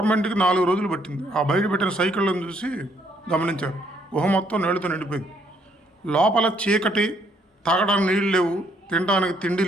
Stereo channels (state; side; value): normal; both; correlation 0.69